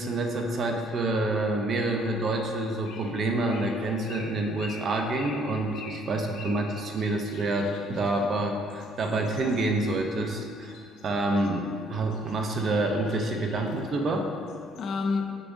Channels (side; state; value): both; normal; correlation 0.64